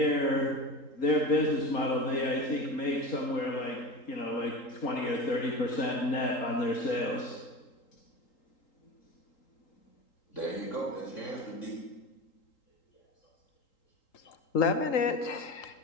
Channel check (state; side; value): late; right; 3.8 ms